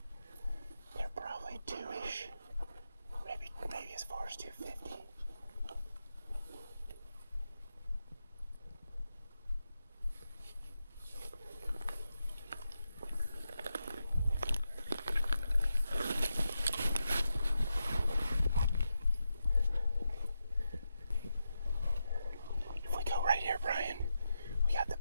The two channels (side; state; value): both; inverted; correlation -0.87